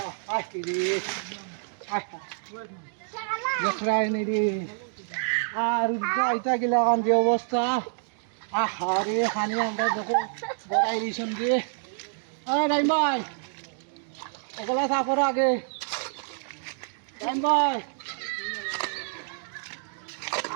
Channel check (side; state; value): left; silent; digital silence